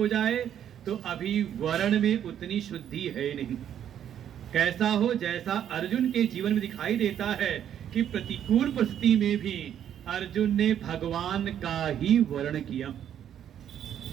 जाए, तो अभी वर्ण में उतनी शुद्धि है नहीं। कैसा हो, जैसा अर्जुन के जीवन में दिखाई देता है कि प्रतिकूल परिस्थिति में भी अर्जुन ने भगवान का ही वर्ण किया।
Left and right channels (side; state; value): left; quieter; 9.9 dB